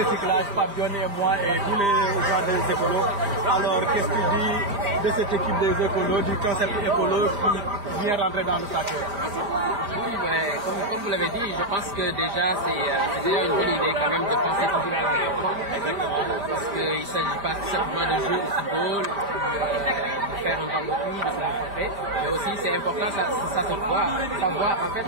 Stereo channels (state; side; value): late; left; 4.7 ms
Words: Fabione et moi et tous les gens des Écolos. Alors qu'est-ce que tu dis de cette équipe des Écolos, du concept écolo qui vient rentrer dans le soccer? Oui, mais comme vous l'avez dit, je pense que déjà c'est déjà une bonne idée quand même de penser toujours à l'environnement. Parce qu'il ne s'agit pas simplement de jouer au football, de faire un barbecue, de se rencontrer, mais aussi c'est important, ça se voit, savoir en fait,